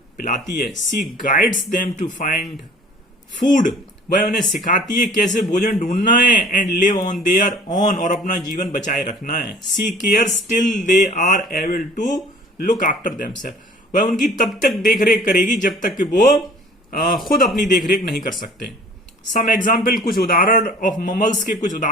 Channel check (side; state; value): both; normal; correlation 0.49